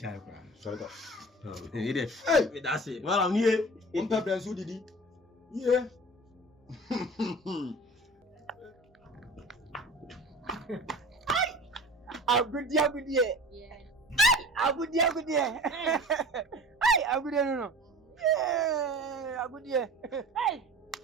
kwa. Sorry go. Hire. Hey, That's it. Malam nie. on pepper so didi. Yeah. Agudi. Yeah. Agudi. Ay, agudi no. Yeah, agudi. Hey.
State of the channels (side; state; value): both; normal; correlation 0.39